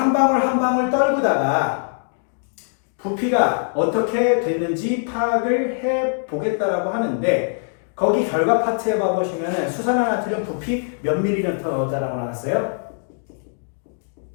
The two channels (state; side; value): silent; right; digital silence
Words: 방울 한 방울 떨구다가 부피가 어떻게 됐는지 파악을 해보겠다라고 하는데 거기 결과 파트에 봐보시면 수산화나트륨 부피 몇 ml 넣었다라고 나왔어요?